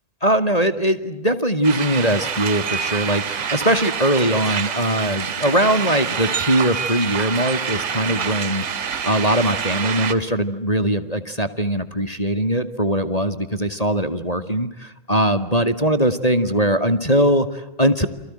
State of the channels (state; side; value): late; right; 1.6 ms